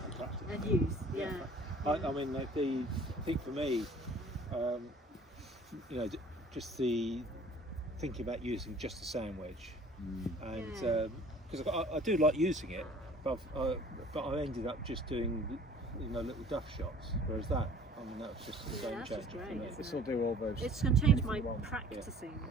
and use. Yeah. I mean, like I think for me, you know, just the thinking about using just a sand wedge, and because I do like using it, but I ended up just doing, you know, little duff shots. Whereas that, I mean, that was just a game that's changer just for great, me. isn't This will do all those. It's going to change my anything you want. practicing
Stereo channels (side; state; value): both; normal; correlation 0.51